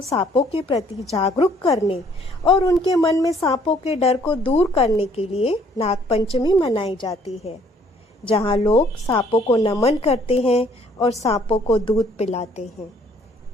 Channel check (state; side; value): normal; both; correlation 0.61